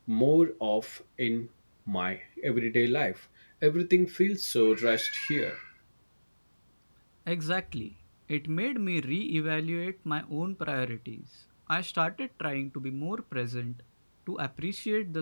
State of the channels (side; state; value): both; inverted; correlation -1.00